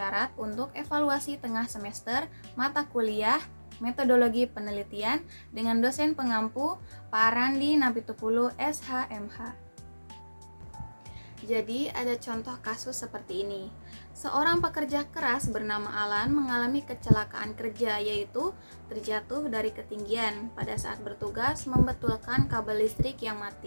untuk evaluasi tengah semester mata kuliah metodologi penelitian dengan dosen pengampu Pak Randi Napitupulu SHMH. Jadi ada contoh kasus seperti ini. Seorang pekerja keras bernama Alan mengalami kecelakaan kerja, yaitu terjatuh dari ketinggian pada saat bertugas membetulkan kabel listrik yang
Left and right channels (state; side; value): inverted; both; correlation -1.00